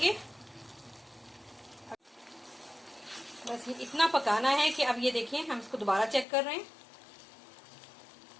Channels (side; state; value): right; drops out; at 6.2 s